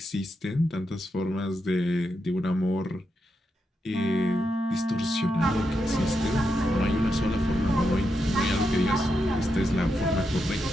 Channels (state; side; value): normal; both; correlation 0.85